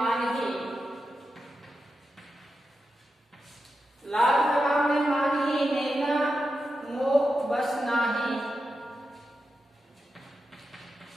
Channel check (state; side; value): normal; both; correlation 0.89